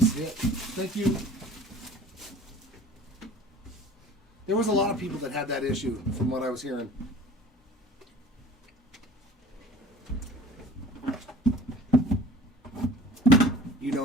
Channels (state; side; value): normal; both; correlation 0.46